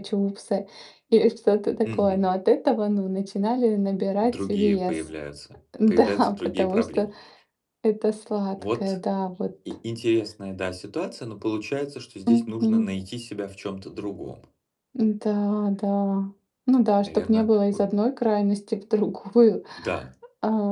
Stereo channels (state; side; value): identical; both; correlation 1.00